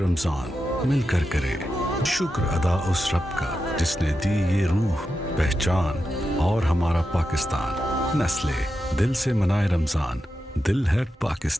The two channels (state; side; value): normal; both; correlation 0.89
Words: मिलकर करें शुक्र अदा उस रब का जिसने दी ये रूह पहचान और हमारा पाकिस्तान। नस्ले दिल से मनाए रमजान, दिल है